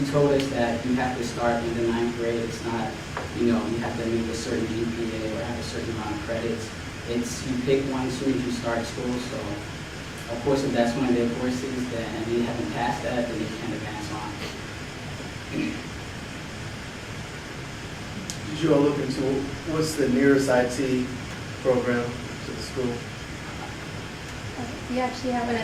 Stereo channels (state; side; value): identical; both; correlation 1.00